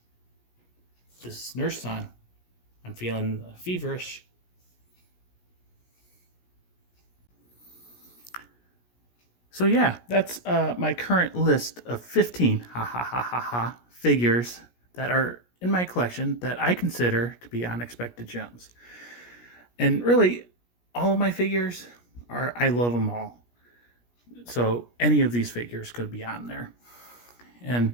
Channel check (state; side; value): late; right; 17 ms